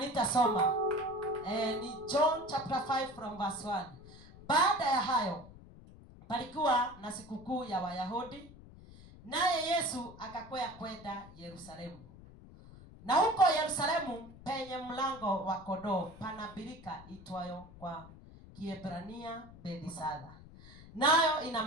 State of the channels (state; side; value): noise; left; rumble, 19 dB below the sound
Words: Ni John chapter 5 from verse 1. Baada ya hayo palikuwa na sikukuu ya Wayahudi, naye Yesu akakwea kwenda Yerusalemu. Na huko Yerusalemu penye mlango wa kondoo pana birika itwayo kwa Kiebrania Bethesda, nayo ina